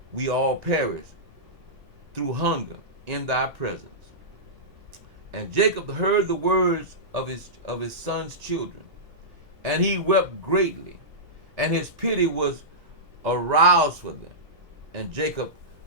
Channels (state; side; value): normal; both; correlation -0.16